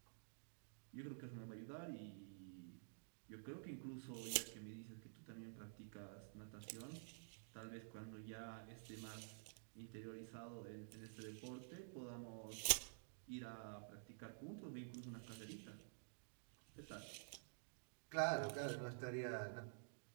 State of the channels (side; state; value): left; silent; digital silence